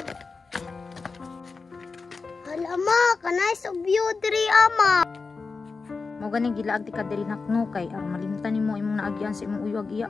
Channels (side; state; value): right; quieter; 4.4 dB